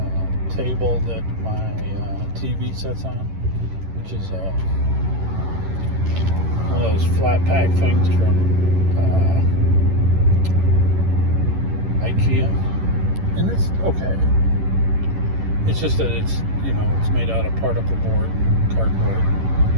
table that my TV sets on, which is one of those flat pack things from IKEA, and it's okay. It's just that it's made out of particle board and cardboard,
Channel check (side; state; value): left; late; 11 ms